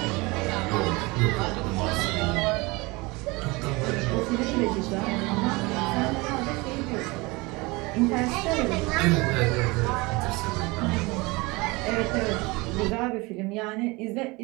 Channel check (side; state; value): left; quieter; 24.4 dB